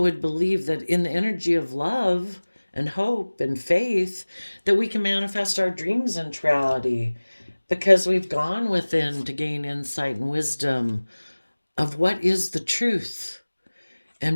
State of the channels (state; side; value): inverted; both; correlation -1.00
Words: would believe that in the energy of love and hope and faith, that we can manifest our dreams into reality, because we've gone within to gain insight and wisdom of what is the truth,